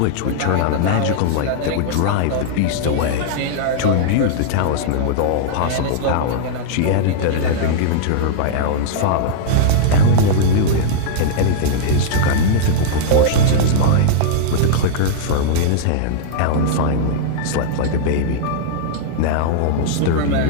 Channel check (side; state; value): both; different; correlation -0.01